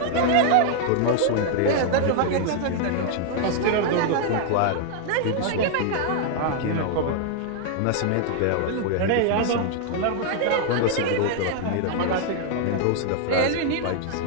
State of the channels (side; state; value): both; different; correlation 0.00